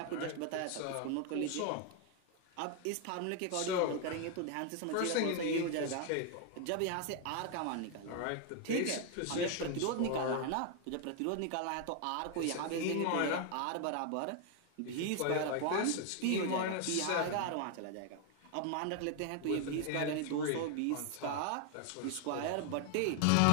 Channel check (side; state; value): both; different; correlation 0.00